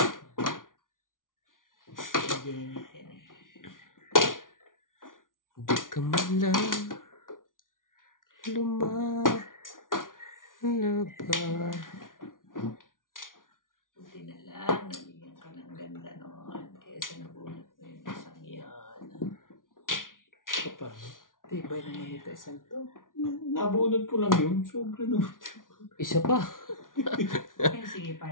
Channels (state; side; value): late; right; 0.89 ms